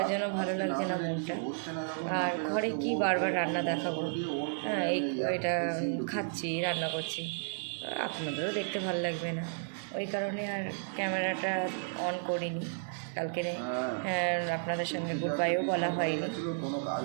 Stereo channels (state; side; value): silent; left; digital silence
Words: জন্য ভালো লাগছে না মনটা। আর ঘরে কি বারবার রান্না দেখাবো? হ্যাঁ এটা খাচ্ছি, রান্না করছি, আপনাদেরও দেখতে ভালো লাগবে না, ওই কারণে আর ক্যামেরাটা অন করিনি। কালকে আপনাদের সঙ্গে গুড বাইও বলা হয়নি।